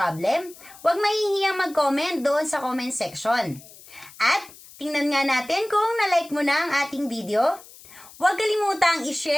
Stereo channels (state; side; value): noise; left; hiss, 20 dB below the sound